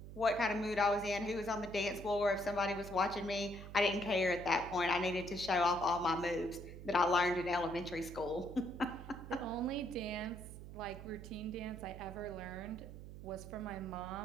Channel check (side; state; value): right; noise; hum, 12 dB below the sound